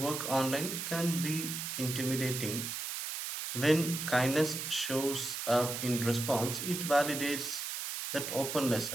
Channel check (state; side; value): noise; right; hiss, 4 dB below the sound